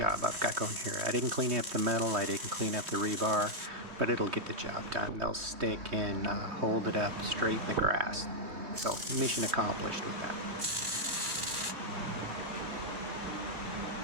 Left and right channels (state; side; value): late; left; 3.2 ms